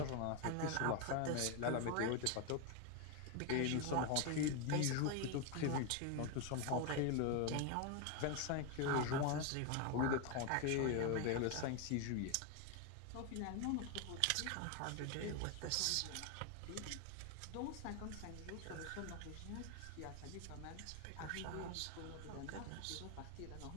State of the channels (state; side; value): different; both; correlation 0.01